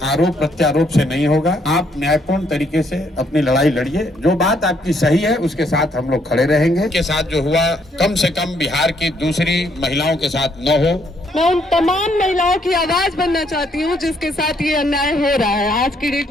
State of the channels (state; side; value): normal; both; correlation 0.70